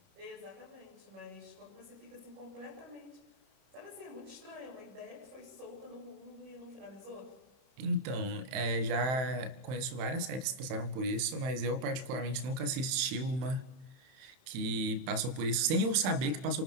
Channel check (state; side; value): late; left; 31 ms